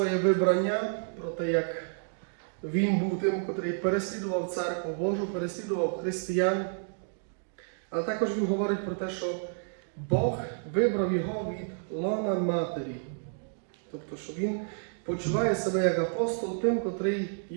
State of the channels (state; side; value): silent; left; digital silence